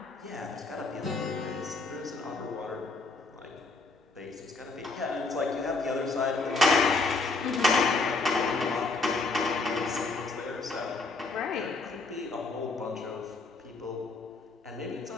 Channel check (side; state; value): right; quieter; 3.7 dB